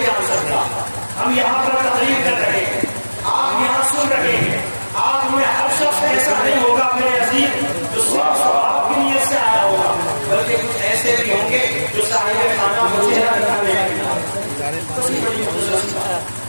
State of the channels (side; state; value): both; inverted; correlation -1.00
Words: جان سکتا۔ ہم یہاں پر تقریر کر رہے ہیں، آپ یہاں سن رہے ہیں، آپ میں ہر شخص ایسا نہیں ہوگا میرے عزیز جو صرف ثواب کی نیت سے آیا ہوگا، بلکہ کچھ ایسے بھی ہوں گے جو صاحب خانہ کو چہرہ دکھانے کے لیے،